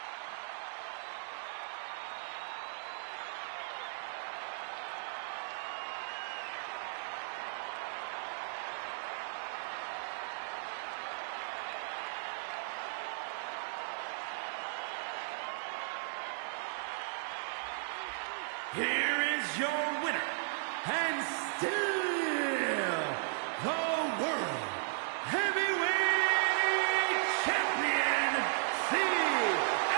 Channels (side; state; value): left; silent; 54 dB below the other